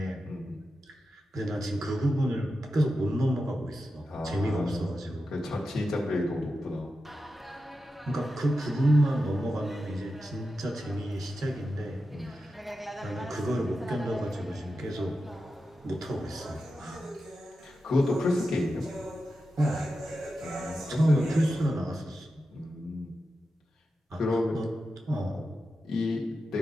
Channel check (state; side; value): normal; both; correlation 0.90